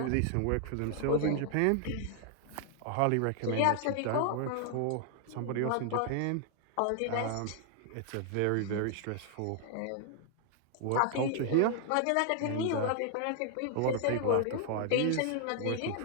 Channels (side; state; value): both; different; correlation 0.00